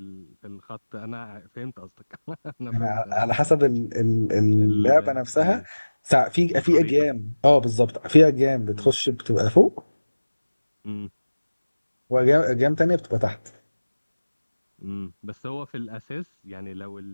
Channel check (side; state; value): both; inverted; correlation -1.00